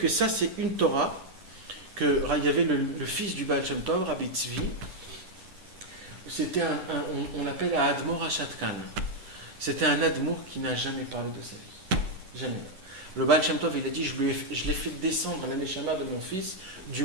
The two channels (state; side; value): late; left; 10 ms